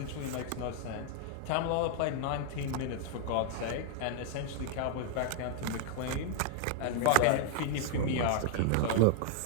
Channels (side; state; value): both; different; correlation 0.00